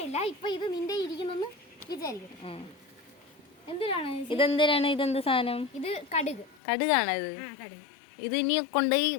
ഇപ്പൊ ഇത് നിന്റെ ഇരിക്കുന്നെന്ന് വിചാരിക്കട്ടെ. എന്തിനാണ് ഇതെന്തിനാണ്? ഇതെന്ത് സാധനം? ഇത് കടുകാണ് ഇത്. കടുക്. ഇത് ഇനി കൊണ്ടുപോയി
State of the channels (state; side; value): drops out; right; at 6.6 s